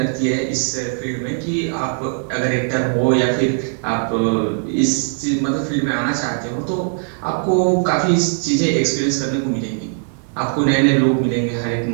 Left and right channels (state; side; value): silent; left; digital silence